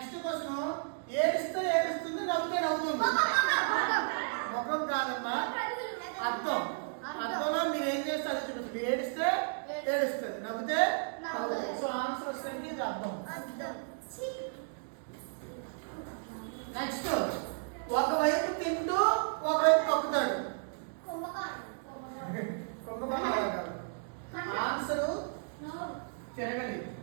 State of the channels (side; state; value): left; silent; digital silence